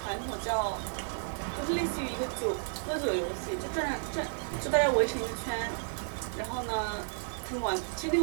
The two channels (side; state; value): left; silent; digital silence